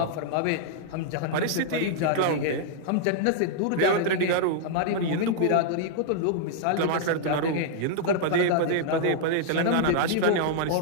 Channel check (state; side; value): different; both; correlation -0.01